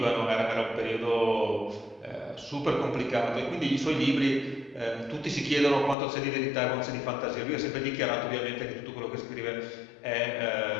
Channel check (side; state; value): right; drops out; at 6.0 s